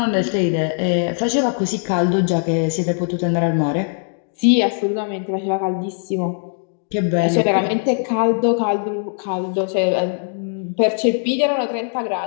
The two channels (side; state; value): right; silent; 55 dB below the other